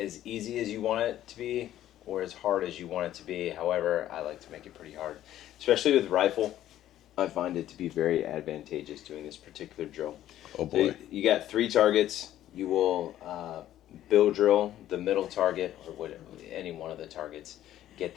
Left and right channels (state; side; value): quieter; right; 12.7 dB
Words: as easy as you want it to be or as hard as you want it to be. However, I like to make it pretty hard, especially with rifle. I find it to be very advantageous doing this particular drill. Oh boy. So you got 3 targets. You will bill drill the middle target or any one of the targets. Get